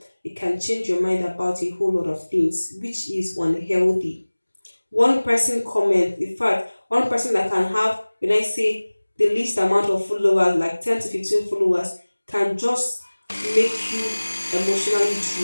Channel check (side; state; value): both; inverted; correlation -1.00